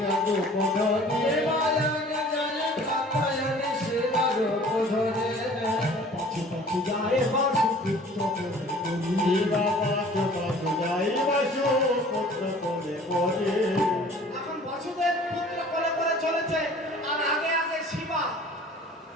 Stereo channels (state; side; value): normal; both; correlation 0.49